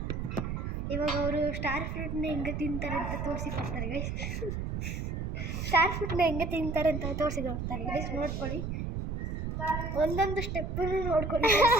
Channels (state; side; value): noise; right; rumble, 3 dB below the sound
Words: ಇವಾಗ ಅವರು ಸ್ಟಾರ್ ಫ್ರೂಟ್ನ ಹೆಂಗೆ ತಿಂತಾರೆ ಅಂತ ತೋರಿಸಿಕೊಡ್ತಾರೆ ಗೈಸ್. ಸ್ಟಾರ್ ಫ್ರೂಟ್ನ ಹೆಂಗೆ ತಿಂತಾರೆ ಅಂತ ತೋರಿಸಿಕೊಡ್ತಾರೆ ಗೈಸ್, ನೋಡ್ಕೊಳ್ಳಿ. ಒಂದೊಂದು ಸ್ಟೆಪ್ಪು ನೋಡ್ಕೊಳ್ಳಿ.